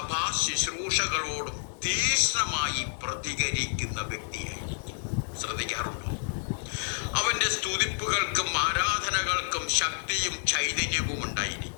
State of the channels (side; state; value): right; silent; 58 dB below the other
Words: ശുശ്രൂഷകളോടും തീക്ഷ്ണമായി പ്രതികരിക്കുന്ന വ്യക്തിയായിരിക്കും. ശ്രദ്ധിക്കാറുണ്ടോ? അവന്റെ സ്തുതിപ്പുകൾക്കും ആരാധനകൾക്കും ശക്തിയും ചൈതന്യവും